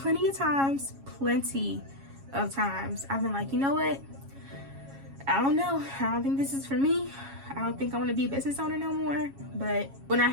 of times I've been like, you know what? I don't know. I don't think this is for me. I don't think I want to be a business owner no more. But when I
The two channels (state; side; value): late; left; 7.3 ms